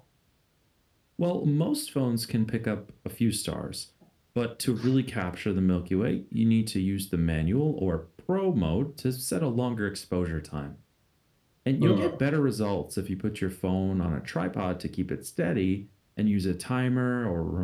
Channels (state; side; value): identical; both; correlation 1.00